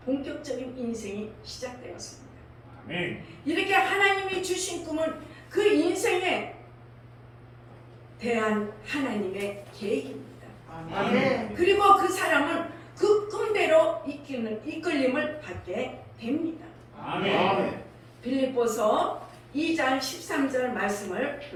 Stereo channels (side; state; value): both; identical; correlation 1.00